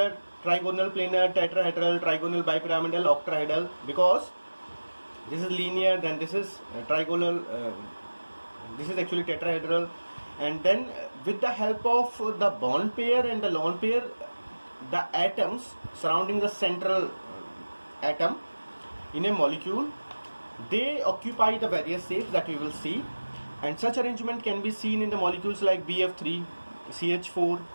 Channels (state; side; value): inverted; both; correlation -1.00